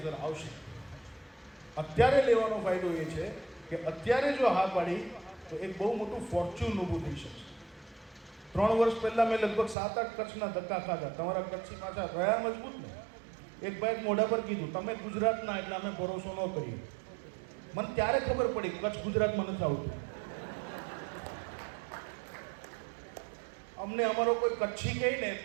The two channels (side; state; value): left; drops out; at 9.8 s